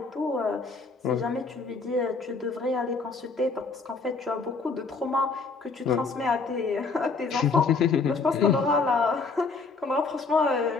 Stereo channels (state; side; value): quieter; right; 4.3 dB